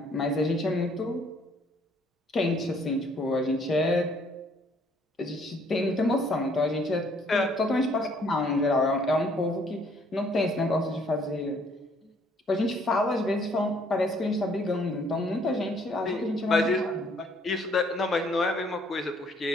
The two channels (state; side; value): normal; both; correlation 0.63